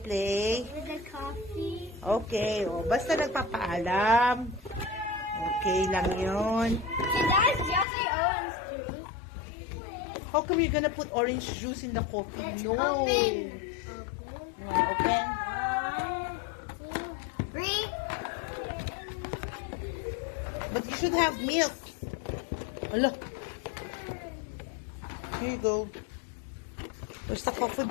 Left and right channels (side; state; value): right; drops out; at 7.9 s